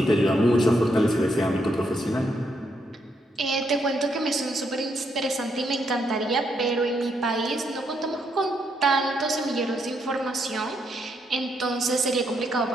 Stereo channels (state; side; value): normal; both; correlation 0.77